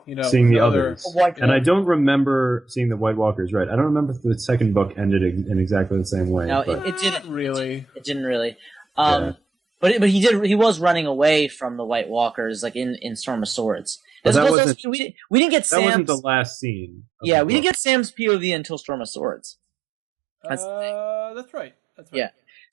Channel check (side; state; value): left; drops out; at 14.6 s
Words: seeing the others. And I don't remember seeing the White Walkers. Right? I don't remember if the second book ended in exactly the same way. No, but it didn't really. It didn't really. But he did. He was running away from the White Walkers, like in Storm of Swords. We didn't get Sam's. That wasn't the last scene. Yeah, we didn't get Sam's POV until Storm of Swords. That's right. Yeah.